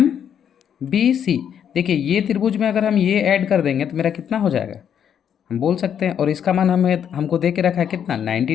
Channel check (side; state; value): right; quieter; 8.7 dB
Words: देखिए ये त्रिभुज में अगर हम ये ऐड कर देंगे तो मेरा कितना हो जाएगा? हम बोल सकते हैं। और इसका मान हमको दे के रखा है कितना? 90